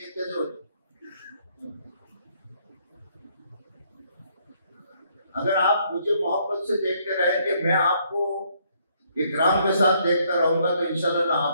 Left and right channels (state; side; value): inverted; both; correlation -0.69